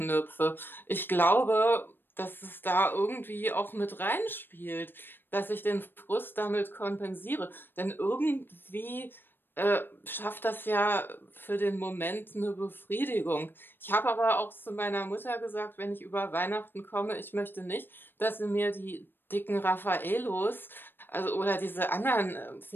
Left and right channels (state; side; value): late; right; 0.097 ms